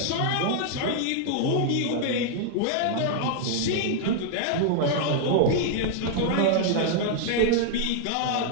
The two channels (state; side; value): different; both; correlation 0.00